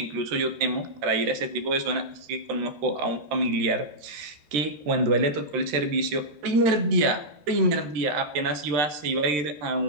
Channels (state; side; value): late; left; 13 ms